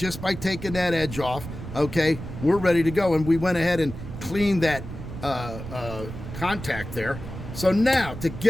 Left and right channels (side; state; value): right; noise; rumble, 10 dB below the sound